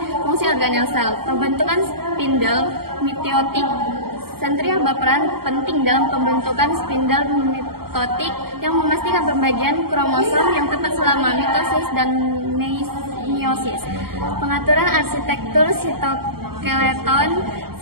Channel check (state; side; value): late; left; 0.94 ms